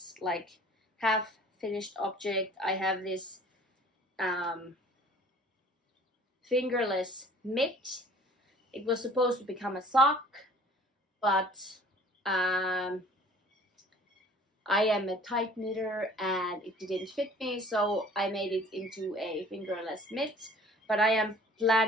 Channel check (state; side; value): normal; both; correlation 0.51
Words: like half finished object. I have this fingerless mitt. It was supposed to become a sock, but I am a tight knitter and it didn't fit me, so I made it into a fingerless mitt. But I am